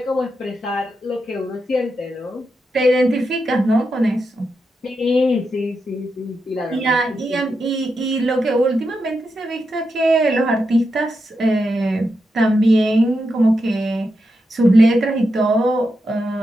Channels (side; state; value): both; normal; correlation 0.86